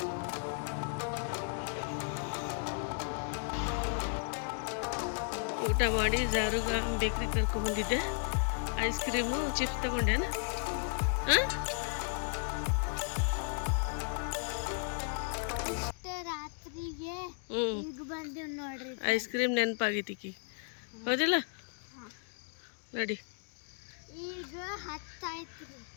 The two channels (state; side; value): silent; right; 55 dB below the other